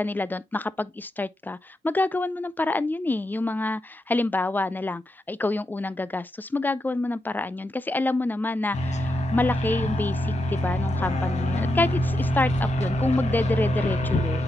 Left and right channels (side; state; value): both; normal; correlation 0.85